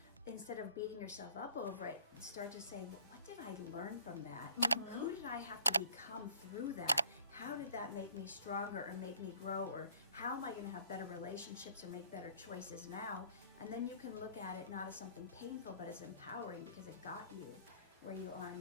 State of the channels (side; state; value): both; inverted; correlation -0.54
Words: instead of beating yourself up over it, start to say, well, what did I learn from that? Who did I have to become through that? How did that make me stronger or make me grow? Or how am I going to have better relationships or make better choices now? And then you can look at it not as something painful, but as empowering, because it got you where you are